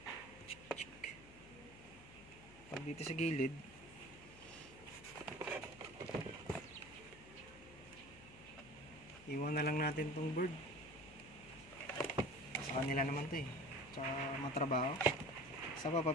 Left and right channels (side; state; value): left; noise; hum, 19 dB below the sound